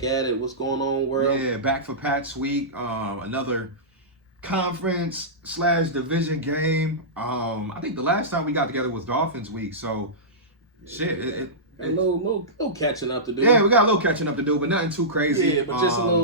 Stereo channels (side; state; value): both; normal; correlation -0.17